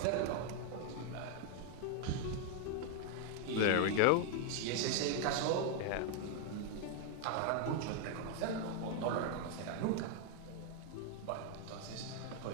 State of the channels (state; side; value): different; both; correlation 0.00